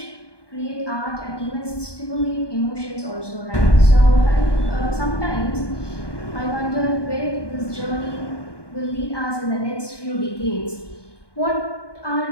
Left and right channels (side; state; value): right; late; 1.2 ms